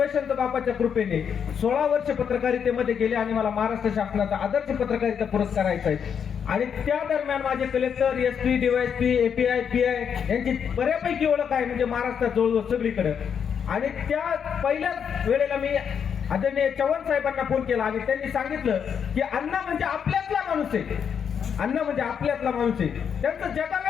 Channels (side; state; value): right; quieter; 7.5 dB